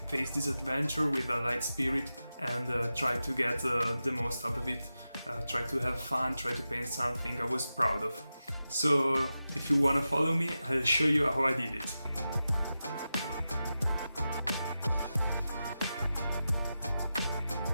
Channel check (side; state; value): both; inverted; correlation -0.92